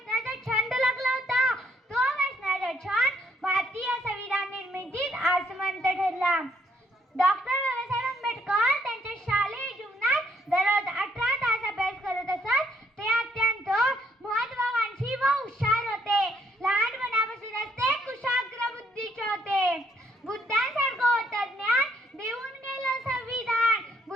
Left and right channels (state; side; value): normal; both; correlation 0.70